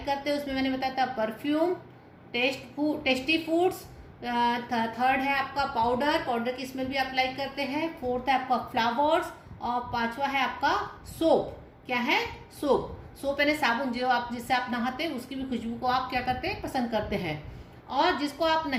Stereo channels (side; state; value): both; identical; correlation 1.00